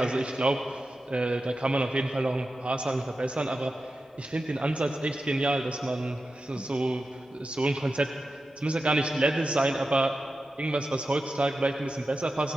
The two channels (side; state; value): both; normal; correlation 0.92